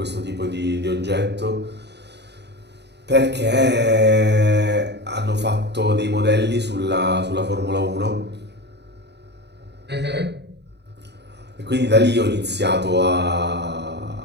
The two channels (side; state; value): left; late; 0.50 ms